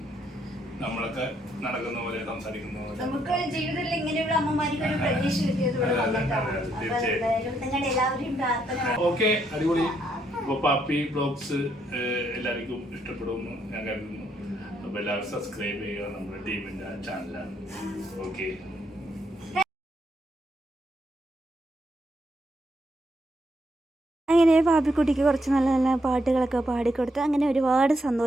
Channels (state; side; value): normal; both; correlation 0.75